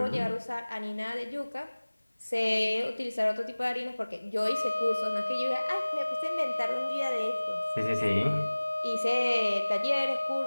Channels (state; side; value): inverted; both; correlation -1.00